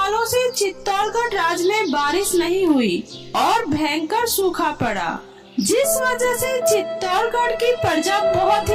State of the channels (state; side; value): identical; both; correlation 1.00